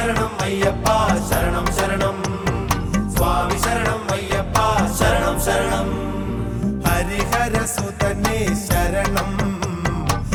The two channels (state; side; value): identical; both; correlation 1.00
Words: അയ്യപ്പ ശരണം ശരണം, സ്വാമി ശരണം അയ്യപ്പ ശരണം ശരണം. ഹരിഹരസുതനേ ശരണം,